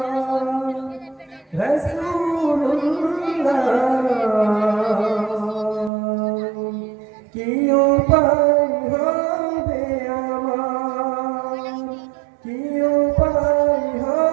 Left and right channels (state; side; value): drops out; left; at 5.9 s